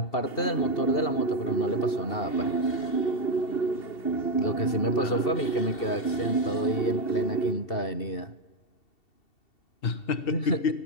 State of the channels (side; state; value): right; late; 2.7 ms